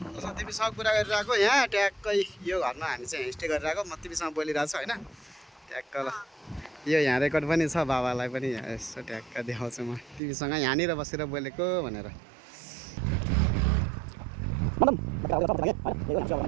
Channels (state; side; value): drops out; left; at 10.2 s